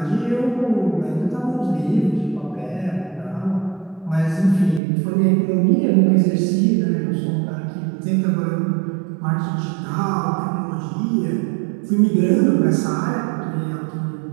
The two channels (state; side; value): drops out; left; at 4.8 s